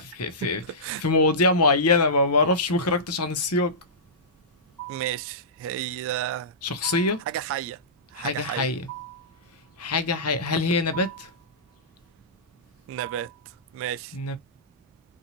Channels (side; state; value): both; normal; correlation -0.19